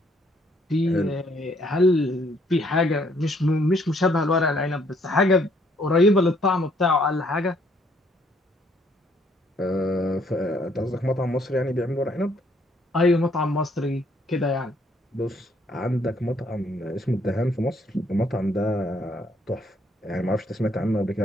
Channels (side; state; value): both; normal; correlation 0.67